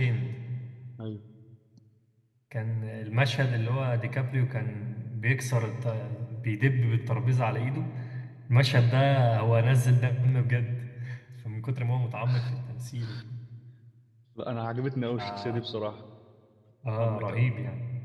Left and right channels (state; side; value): identical; both; correlation 1.00